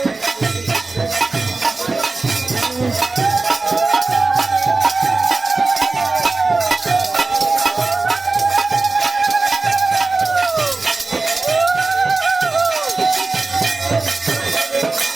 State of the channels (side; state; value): left; quieter; 3.6 dB